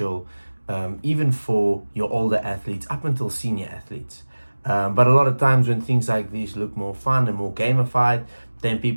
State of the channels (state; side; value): inverted; both; correlation -1.00